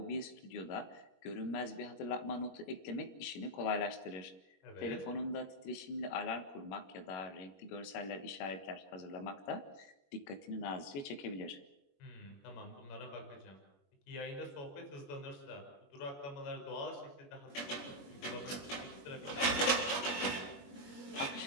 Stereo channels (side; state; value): right; late; 21 ms